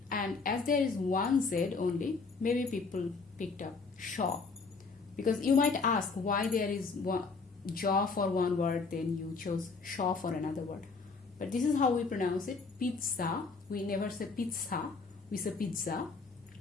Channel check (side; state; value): right; quieter; 4.4 dB